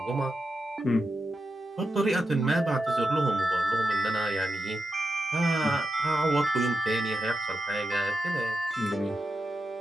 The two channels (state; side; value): normal; both; correlation 0.88